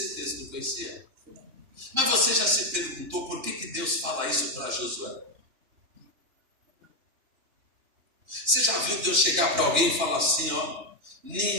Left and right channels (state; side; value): late; left; 2.9 ms